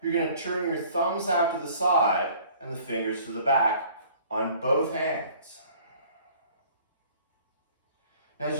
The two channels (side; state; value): both; inverted; correlation -0.53